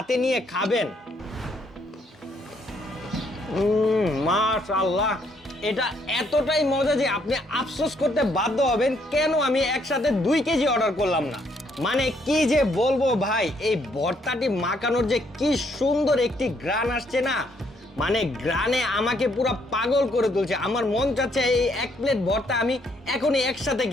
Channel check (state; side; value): normal; both; correlation 0.70